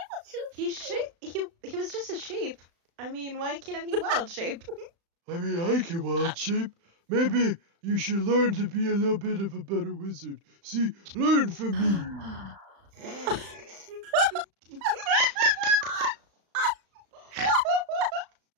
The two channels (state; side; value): late; left; 35 ms